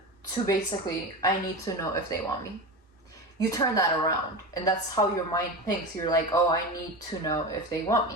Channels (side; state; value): both; normal; correlation 0.25